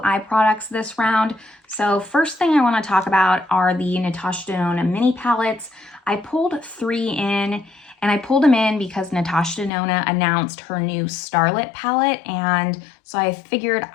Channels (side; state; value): right; drops out; at 9.7 s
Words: eye products this round. So first thing I want to talk about are the Natasha Denona mini palettes. I pulled 3 in, and I pulled them in because Natasha Denona announced her new Starlit palette, and so I figured